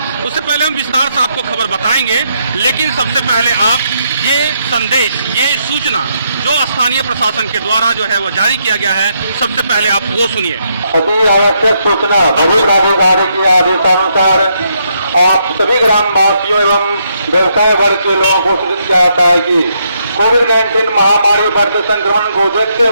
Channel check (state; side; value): inverted; both; correlation -0.76